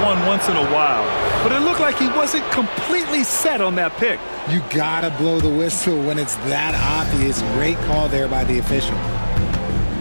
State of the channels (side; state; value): both; inverted; correlation -1.00